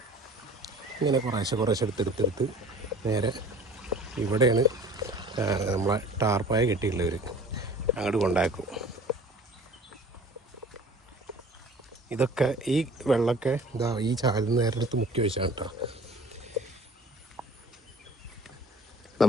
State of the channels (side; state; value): both; normal; correlation 0.47